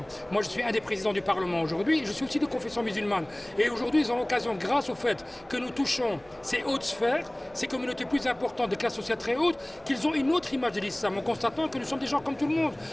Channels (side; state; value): right; noise; hum, 27 dB below the sound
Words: Moi, je suis un des présidents du Parlement aujourd'hui, je suis aussi de confession musulmane. Et aujourd'hui, ils ont l'occasion, grâce au fait que nous touchons ces hautes sphères, ces communautés plus importantes, de classes sociales très hautes, qu'ils ont une autre image de l'islam, en constatant que nous sommes des gens comme tout le monde,